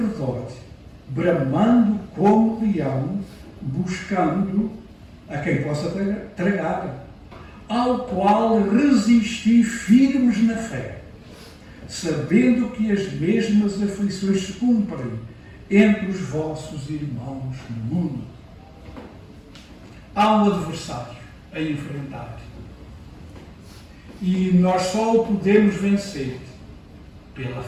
bramando como leão, buscando a quem possa tragar, ao qual resisti firmes na fé, sabendo que as mesmas aflições se cumprem entre os vossos irmãos no mundo. Há um adversário a enfrentar. E nós só o podemos vencer pela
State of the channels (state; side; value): identical; both; correlation 1.00